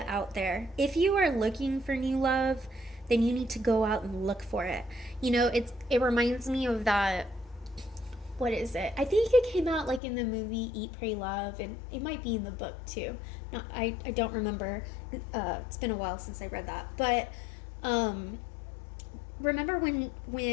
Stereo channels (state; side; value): drops out; right; at 10.0 s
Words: out there. If you are looking for new love, then you need to go out and look for it. It reminds me of that, what is it? I think it came out like in the movie Eat, Pray, Love, and it might be in the book too. No, I don't remember. It's been a while since I read that. But remember when